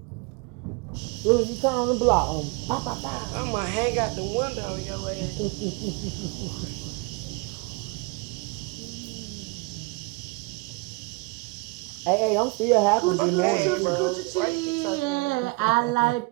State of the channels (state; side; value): quieter; left; 27.1 dB